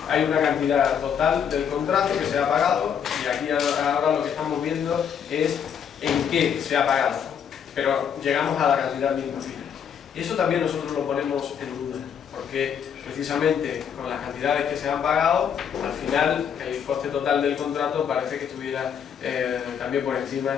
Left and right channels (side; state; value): right; quieter; 8.0 dB